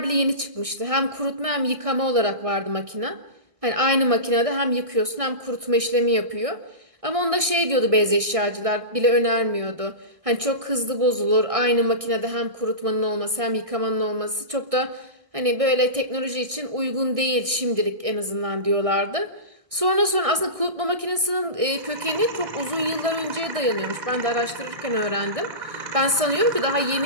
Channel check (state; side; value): late; left; 1.6 ms